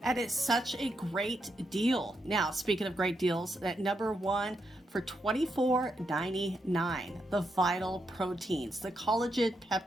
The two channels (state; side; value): normal; both; correlation 0.82